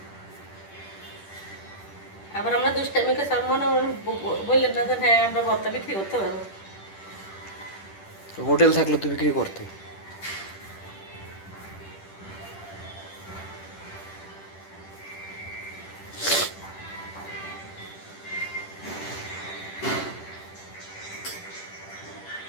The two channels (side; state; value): right; late; 10 ms